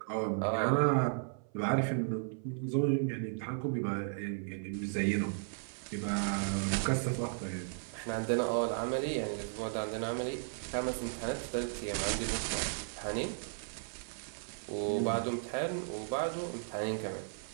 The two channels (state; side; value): silent; left; 54 dB below the other